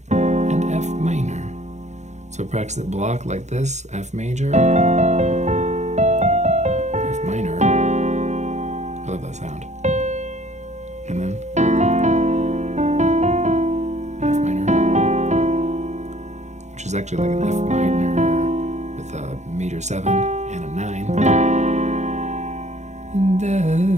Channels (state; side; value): late; left; 0.33 ms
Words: and F minor. So practice it block like this, F major, F minor. I love that sound. And then F minor, which is actually like an F minor with meter 7 and a 9.